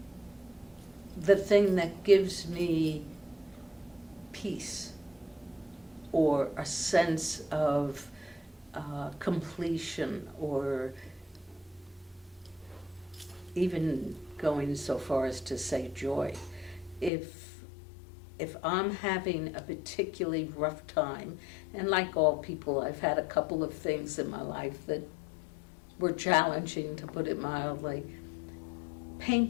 the thing that gives me peace or a sense of completion, or even going so far as to say joy. If I'm having a particularly rough time, and like all people, I've had a couple of things in my life that were challenging, to put it mildly,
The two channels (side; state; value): right; drops out; at 17.1 s